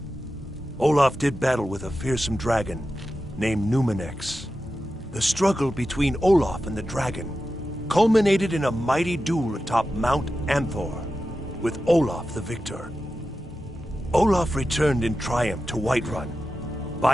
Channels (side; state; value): both; normal; correlation 0.92